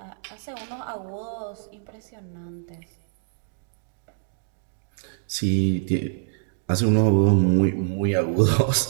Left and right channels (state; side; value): silent; left; digital silence